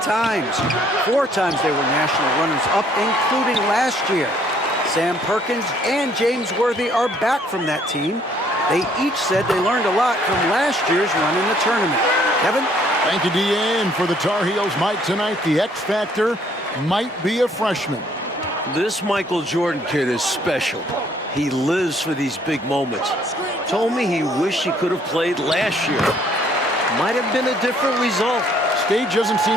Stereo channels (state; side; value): normal; both; correlation 0.64